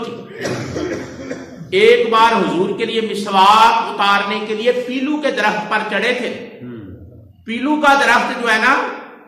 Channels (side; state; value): both; identical; correlation 1.00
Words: تھی. ایک بار حضور کے لیے مسواک اتارنے کے لیے پیلو کے درخت پر چڑھے تھے. پیلو کا درخت جو ہے نا